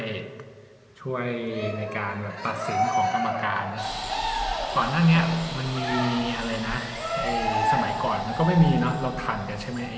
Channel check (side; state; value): both; identical; correlation 1.00